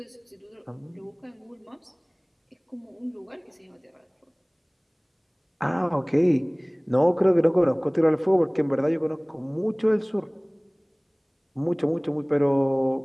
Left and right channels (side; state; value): both; identical; correlation 1.00